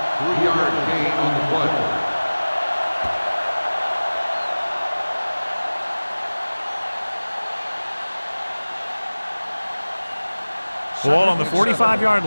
gain on the play. Ball on the 45-yard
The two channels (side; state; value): both; inverted; correlation -1.00